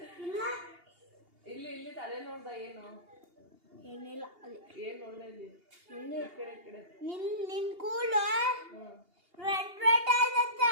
ಇಲ್ಲಿ ತಲೆ ನೋಡ್ದ? ಏನು ಏನಿಲ್ಲ. ಏನ್ ನೋಡ್ದ ಇಲ್ಲಿ? ಕಡೆ ನಿನ್ ಕೂಲು ರೆಡ್ ರೆಡ್ ಆಯ್ತಂತೆ.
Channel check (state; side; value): late; left; 2.8 ms